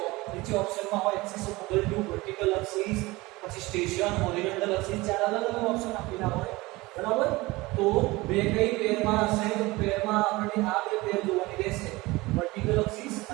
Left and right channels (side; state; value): left; quieter; 21.4 dB